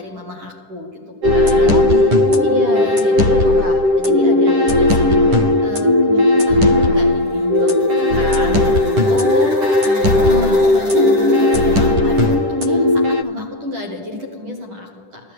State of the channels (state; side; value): late; left; 10 ms